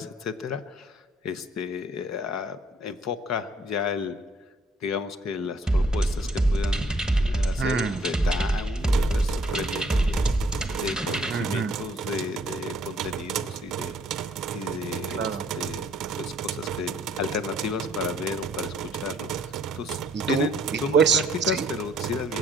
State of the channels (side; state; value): both; normal; correlation 0.62